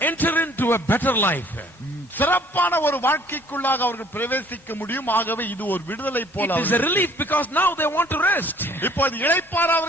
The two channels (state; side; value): normal; both; correlation 0.57